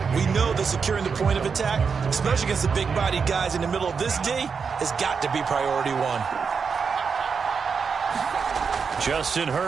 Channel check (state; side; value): quieter; left; 5.7 dB